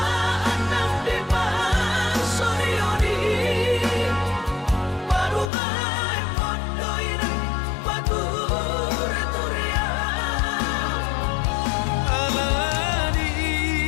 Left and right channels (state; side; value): drops out; right; at 5.5 s